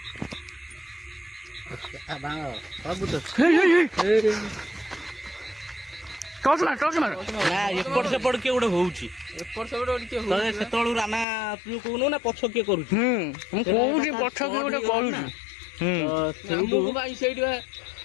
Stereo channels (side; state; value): right; drops out; at 11.2 s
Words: ଟର୍ଚ୍ଚ ମାର। ନା ଏପଟ ସେପଟ କିଏ ଗୋଟେ ହଉଛି, ସେତେବେଳୁ ରାନା ତୁ କହୁନୁ ନା ପଛ କିଏ କରୁଛି? ମୁଁ କହୁଛି ପଛ କିଏ ଗୋଟେ କରୁଛି। ସେଇଠି